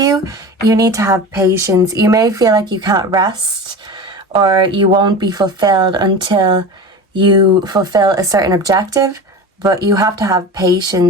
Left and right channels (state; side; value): normal; both; correlation 0.31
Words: You need to have patience. You may feel like you can't rest or you won't be fulfilled until you fulfill a certain objective, but you have to have